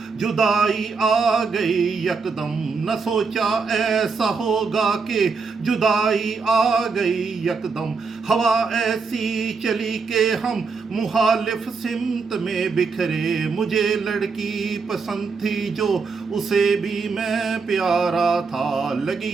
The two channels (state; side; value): quieter; left; 4.8 dB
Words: جدائی آ گئی یکدم، نہ سوچا ایسا ہوگا کہ جدائی آ گئی یکدم، ہوا ایسی چلی کہ ہم مخالف سمت میں بکھرے، مجھے لڑکی پسند تھی جو اسے بھی میں پیارا تھا،